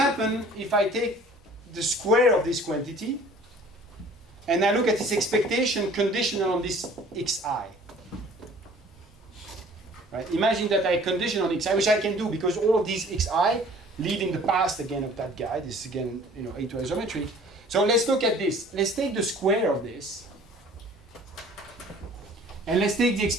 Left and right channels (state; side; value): normal; both; correlation 0.50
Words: if I take the square of this quantity and I look at its expectation conditional on this xi. Right? Imagine that I condition on xi, which I can do because all of these xi live in the past again of that guy. This is again, A to isometry. So let's look at this. Let's take the square of this, and let's take the